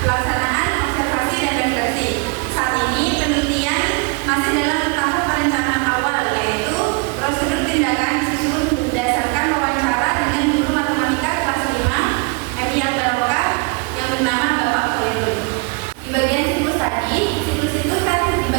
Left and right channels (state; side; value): quieter; left; 31.7 dB